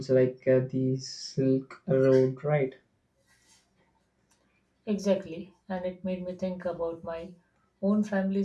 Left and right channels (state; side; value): identical; both; correlation 1.00